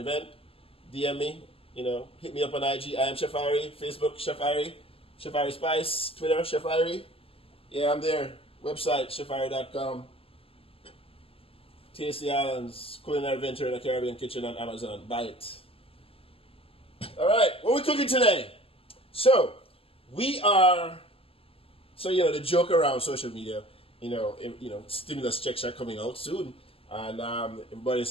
DM me. Hit me up on IG. I am Chef Irie. Facebook, Chef Irie. Chef Irie Spice. Twitter, Chef Irie. Yeah, I'm there. Website, chefirie.com. Tasty Islands, Culinary Venture in the Caribbean Kitchen on Amazon. Buy it. All right, what are we cooking today? The joke around social media, stimulus checks are coming out soon. And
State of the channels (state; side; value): late; right; 0.27 ms